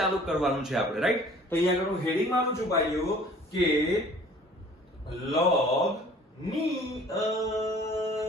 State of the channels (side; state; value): both; normal; correlation 0.51